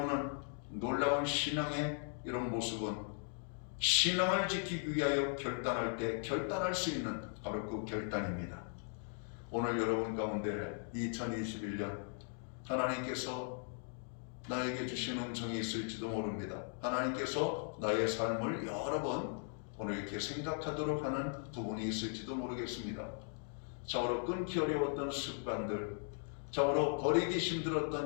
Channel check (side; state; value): right; silent; 52 dB below the other